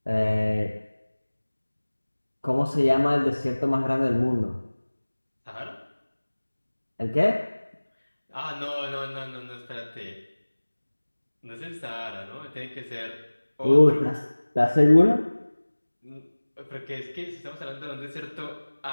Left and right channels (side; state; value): both; inverted; correlation -1.00